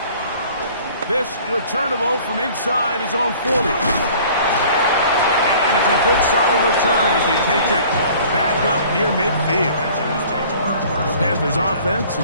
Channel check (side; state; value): both; inverted; correlation -0.50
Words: This returnable from inside his own 40. And it's a good solid return as he takes it back up near midfield. Panthers offense and